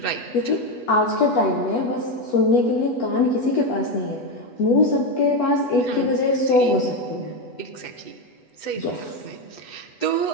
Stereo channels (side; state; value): right; late; 8.1 ms